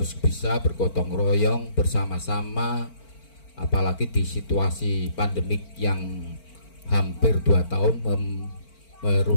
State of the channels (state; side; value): late; right; 4.4 ms